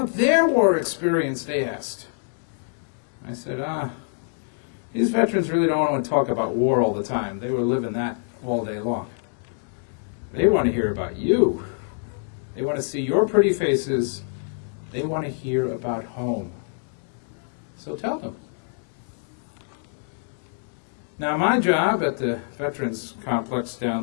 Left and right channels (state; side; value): silent; right; digital silence